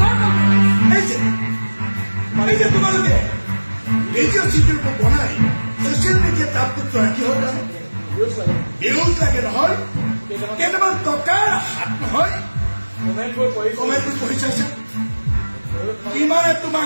এই যে তোমালোকে ভিডিঅ' চিডিঅ' বনাই ছচিয়েল মিডিয়াত আপলোড কৰা কি হ'ল ভিউজ লাগে নহয় কেইটামান টকাৰ হাত নহয় কমেণ্টবোৰ পঢ়ি চাইছে কিমানে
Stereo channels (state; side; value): inverted; both; correlation -1.00